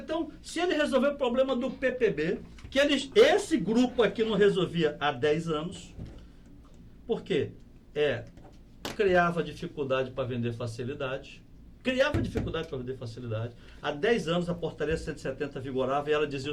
então, se ele resolver o problema do PPB, que esse grupo aqui não resolvia há 10 anos, por quê? Criava dificuldade para vender facilidade. Há 10 anos a portaria 170 vigorava e ela dizia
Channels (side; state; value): both; identical; correlation 1.00